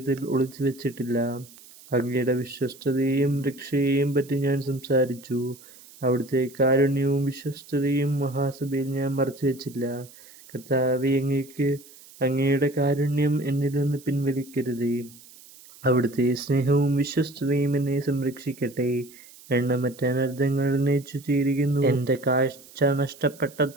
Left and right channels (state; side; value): noise; right; hiss, 22 dB below the sound